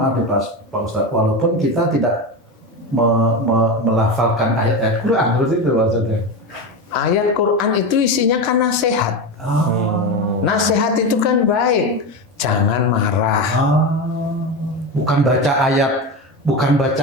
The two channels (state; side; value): normal; both; correlation 0.20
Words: ya Pak Ustadz, walaupun kita tidak melafalkan ayat-ayat Quran, terus itu maksudnya. Ayat Quran itu isinya kan nasihat. Nasihat itu kan baik. Jangan marah. Bukan baca